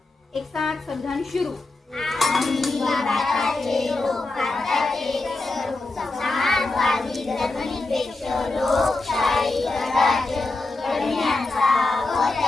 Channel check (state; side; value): quieter; right; 3.2 dB